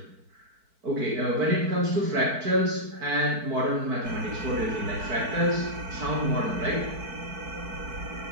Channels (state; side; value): late; left; 4.5 ms